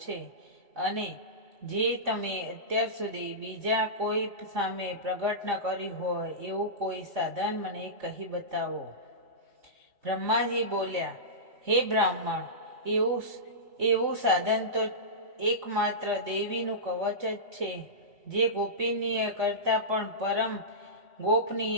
છે, અને જે તમે અત્યાર સુધી બીજા કોઈ સામે પ્રગટ ન કર્યું હોય એવું કોઈ સાધન મને કહી બતાવો. બ્રહ્માજી બોલ્યા, હે બ્રાહ્મણ, એવું સાધન તો એકમાત્ર દેવીનું કવચ જ છે, જે ગોપનીય કરતાં પણ પરમ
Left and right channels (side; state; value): left; late; 3.6 ms